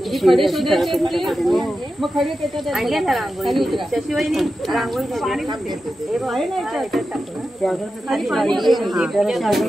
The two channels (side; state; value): both; normal; correlation 0.91